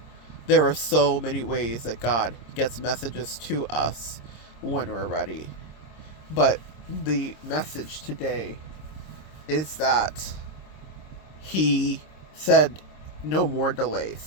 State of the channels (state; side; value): late; right; 26 ms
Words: There are so many ways that God gets messages to us when we're ready. But the message today is that He said no more